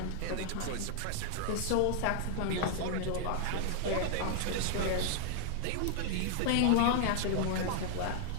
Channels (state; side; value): different; both; correlation 0.00